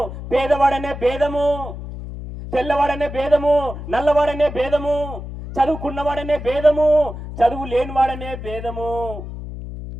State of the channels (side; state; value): left; noise; hum, 9 dB below the sound